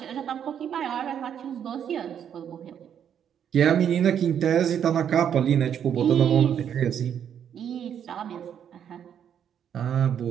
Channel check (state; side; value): quieter; left; 8.8 dB